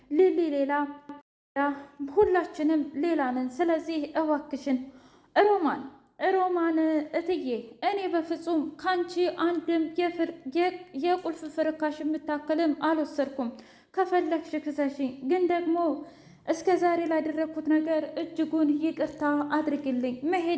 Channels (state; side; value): identical; both; correlation 1.00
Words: ሊሊ ሌላ፣ ሁላችንም ሌላ ነን። ስለዚህ እባክሽን ሮማን እትዬ፣ እኔ በፍጹም ካንቺ አንድም የቁልፍ ፍርካሽ የምታክልም አልወሰድኩም። ከፈለግሽ ክሰሽኝ፣ ግን ደግሞ እስከ ዛሬ ላደረግኩት ነገር እጅጉን ይቅርታ አድርግልኝ።